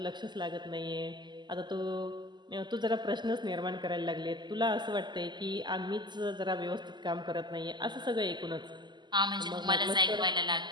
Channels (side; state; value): left; late; 0.21 ms